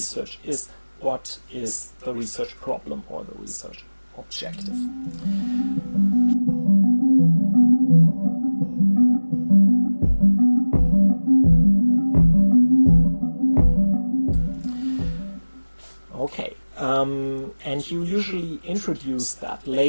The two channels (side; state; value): both; inverted; correlation -1.00